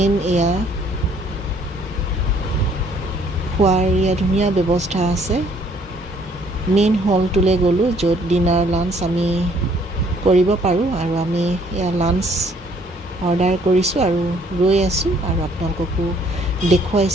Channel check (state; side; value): normal; both; correlation 0.62